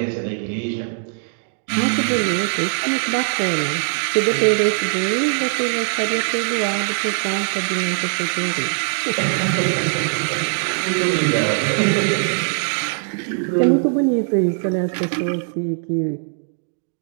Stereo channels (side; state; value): left; silent; 65 dB below the other